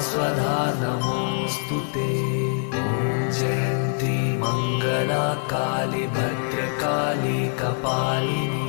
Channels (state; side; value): silent; right; digital silence